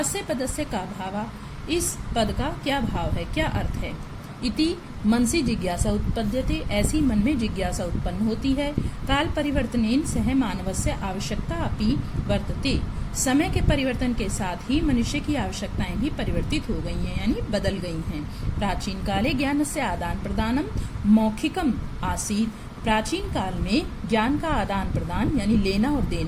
पदस्य का भाव, इस पद का क्या भाव है, क्या अर्थ है। इति मनसि जिज्ञासा उत्पद्यते, ऐसी मन में जिज्ञासा उत्पन्न होती है। काल परिवर्तनेन सह मानवस्य आवश्यकता अपि वर्तते, समय के परिवर्तन के साथ ही मनुष्य की आवश्यकताएं भी परिवर्तित हो गई हैं, यानी बदल गई हैं। प्राचीन काले ज्ञानस्य आदान प्रदानम मौखिकम आसीत्, प्राचीन काल में ज्ञान का आदान प्रदान यानी लेना और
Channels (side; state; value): both; identical; correlation 1.00